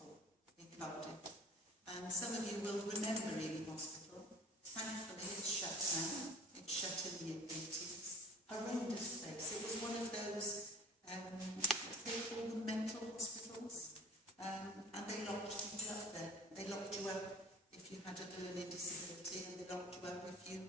in Cardiff. And some of you will remember Hijinx Hospital. Thankfully, it's shut now. It shut in the 80s. Horrendous place. It was one of those, they call them mental hospitals. And they locked people up there. They locked you up if you had a learning disability, and they locked you up if you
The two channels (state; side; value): normal; both; correlation 0.45